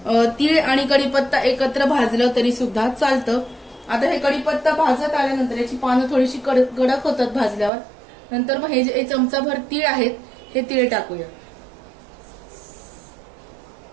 तीळ आणि कढीपत्ता एकत्र भाजलं तरी सुद्धा चालतं. आता हे कढीपत्ता भाजत आल्यानंतर याची पानं थोडीशी कडक होतात भाजल्यावर. नंतर मग हे जे चमचाभर तीळ आहेत हे तीळ टाकूया.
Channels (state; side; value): drops out; left; at 7.7 s